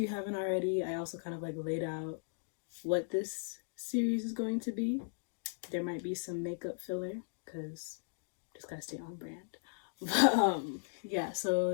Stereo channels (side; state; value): right; silent; digital silence